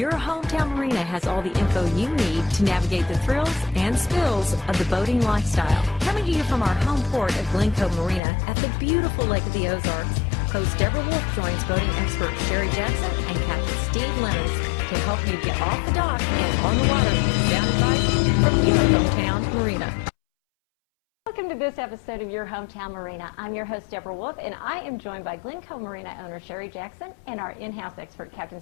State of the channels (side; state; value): right; drops out; at 8.2 s